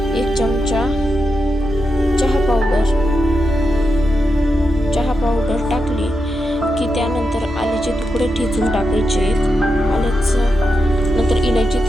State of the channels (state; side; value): normal; both; correlation 0.86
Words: 1 चमचा चहा पावडर टाकली की त्यानंतर आल्याचे तुकडे ठेचून टाकायचे. आल्याचं नंतर इलायची